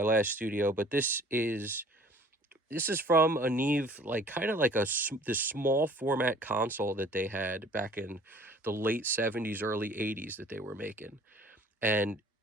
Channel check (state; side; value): normal; both; correlation 0.51